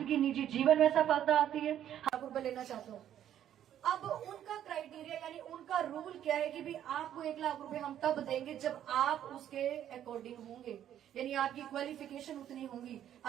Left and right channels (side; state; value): left; quieter; 10.7 dB